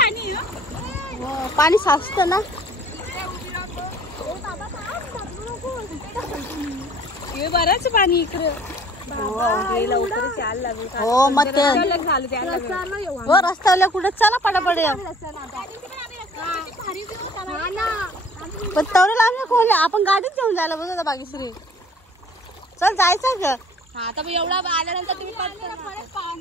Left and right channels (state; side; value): normal; both; correlation 0.53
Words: पाणी साचत ना. बरंच पाणी इकडे. हो मग ते हो रस्त्यावर कुठे चला पटापट. पण तवरेला आम्ही खोले आपण गाडीत घेऊन जायला बघा बागेश्री. चल जायचं ग. आता एवढा आल्यानंतर तुम्ही